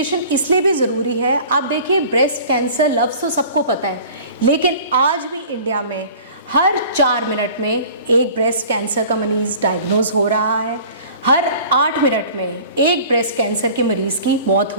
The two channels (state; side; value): inverted; both; correlation -0.45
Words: इसलिए भी ज़रूरी है, आप देखिए ब्रेस्ट कैंसर लफ्ज़ तो सबको पता है, लेकिन आज भी इंडिया में हर 4 मिनट में एक ब्रेस्ट कैंसर का मरीज़ डायग्नोज हो रहा है। हर 8 मिनट में एक ब्रेस्ट कैंसर के मरीज़ की मौत